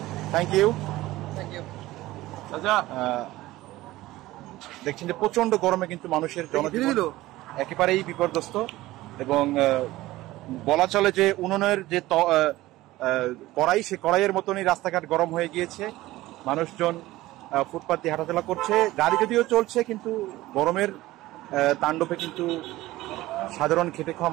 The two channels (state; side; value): quieter; left; 17.4 dB